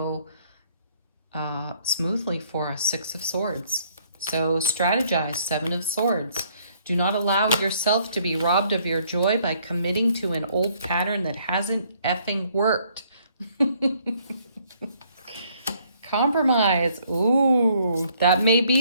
smoothly for us. Six of Swords. So strategize. Seven of Swords. Do not allow yourself to be robbed of your joy by committing to an old pattern that hasn't effing worked. Come Compromise. Ooh, that may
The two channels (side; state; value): both; inverted; correlation -0.65